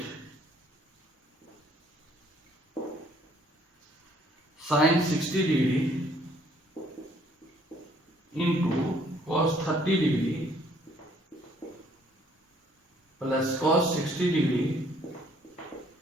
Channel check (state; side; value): normal; both; correlation 0.62